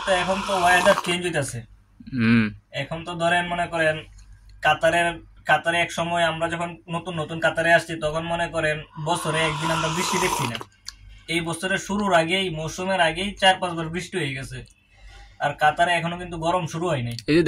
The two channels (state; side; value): identical; both; correlation 1.00